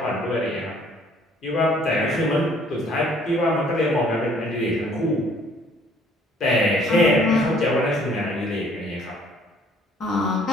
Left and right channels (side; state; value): both; normal; correlation 0.59